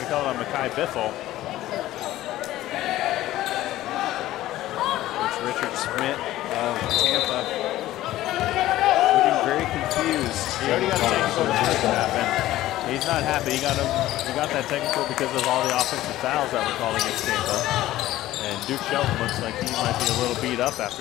call it on Mekhi Biffle. Coach Richard Schmidt of Tampa looking very confused. He already got a technical in the first half, and he's not happy. He got that technical because of all the offensive fouls that were called against Tampa. And Duke Shelton looks like he might be a little beat up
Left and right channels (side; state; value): right; quieter; 15.1 dB